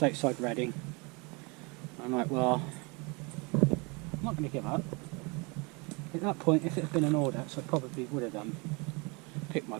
outside Reading. I'm like, well, I'm not going to give up. At that point, if it had been an Audax, I probably would have picked my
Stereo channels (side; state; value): left; quieter; 29.4 dB